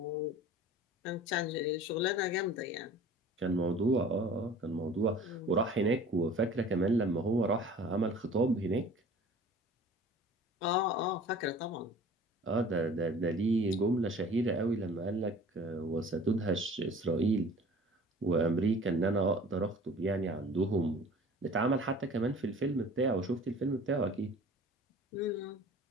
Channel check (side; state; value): both; normal; correlation 0.45